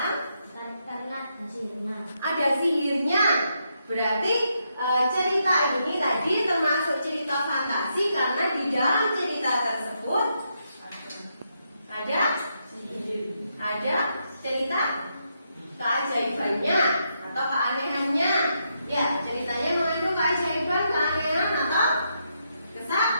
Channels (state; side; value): inverted; both; correlation -0.80